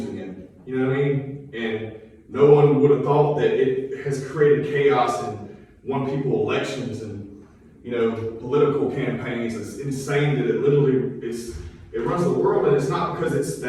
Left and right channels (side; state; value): both; identical; correlation 1.00